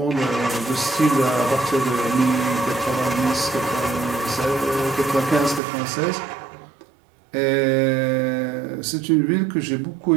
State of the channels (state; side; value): drops out; left; at 5.6 s